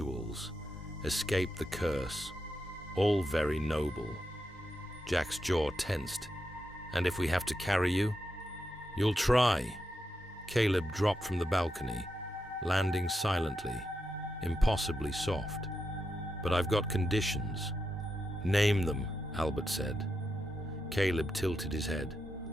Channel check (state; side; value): normal; both; correlation 0.86